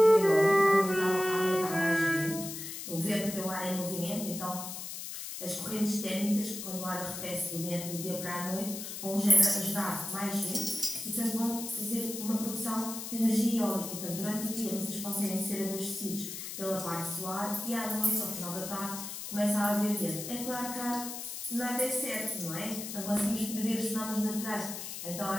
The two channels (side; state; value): left; noise; hiss, 8 dB below the sound